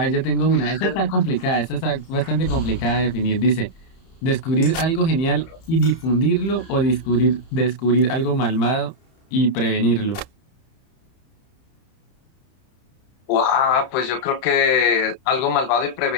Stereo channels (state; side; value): late; right; 31 ms